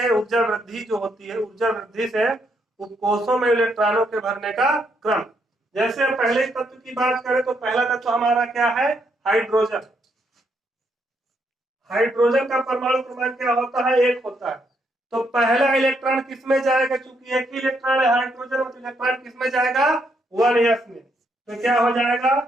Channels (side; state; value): both; normal; correlation 0.75